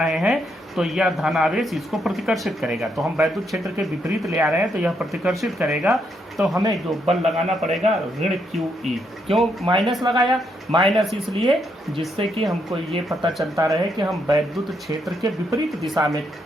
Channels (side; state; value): both; normal; correlation 0.77